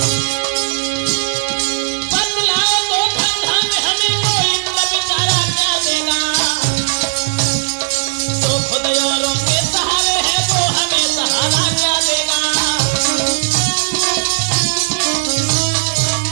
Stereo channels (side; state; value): left; silent; digital silence